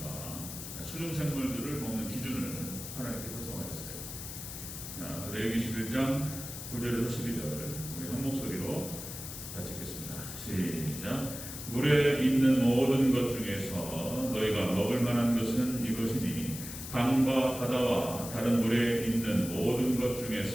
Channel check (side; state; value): left; noise; hiss, 9 dB below the sound